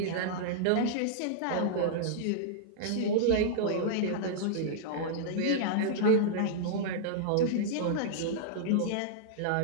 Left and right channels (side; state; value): both; different; correlation -0.02